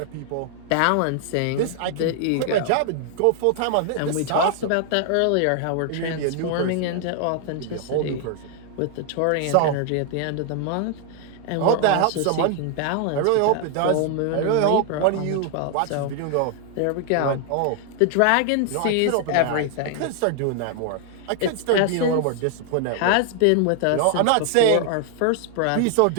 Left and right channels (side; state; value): both; different; correlation 0.00